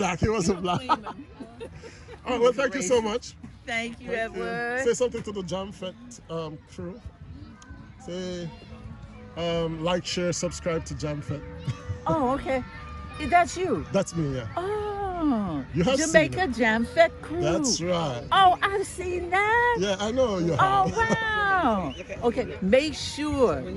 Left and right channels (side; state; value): both; identical; correlation 1.00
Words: He wasn't black. All right, well, thank you so much. Thank you, Edward. Say something to the Jamfête crew. Say, like, share, subscribe to Jamfête. Oh, okay. That's you. That's me, yeah. Oh, You have Jamaica Jamfête crew. That's right. Oh, I've seen that. Yeah, I know you have. Oh, wow. Okay, make sure